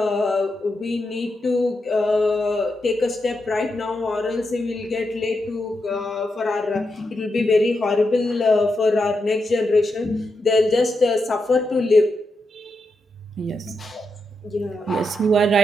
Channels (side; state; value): both; normal; correlation 0.85